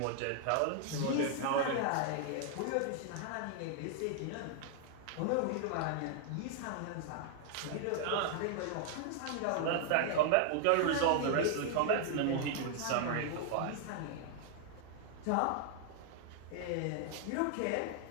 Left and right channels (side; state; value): both; different; correlation 0.00